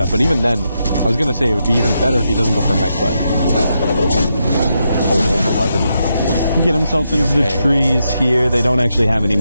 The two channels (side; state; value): both; inverted; correlation -0.83